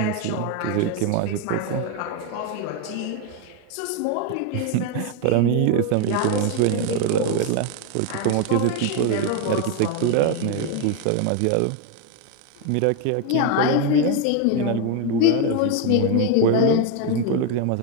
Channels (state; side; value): different; both; correlation 0.02